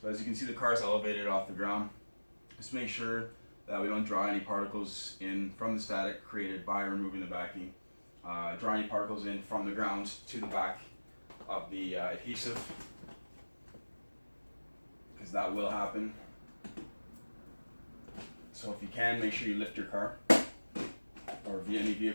as you can see, the car is elevated off the ground. Just make sure that we don't draw any particles in from the static created by removing the backing. Draw any particles in from the ground to the back of the adhesive, because that will happen. So if you can, make sure you lift your car or any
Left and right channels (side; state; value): both; inverted; correlation -1.00